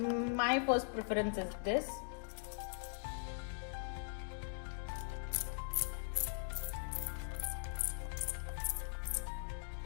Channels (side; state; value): right; silent; digital silence